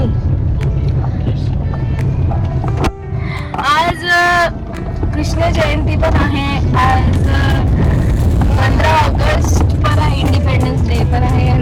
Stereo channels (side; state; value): both; identical; correlation 1.00